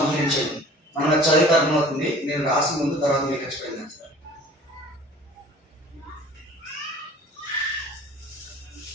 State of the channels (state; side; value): normal; both; correlation 0.47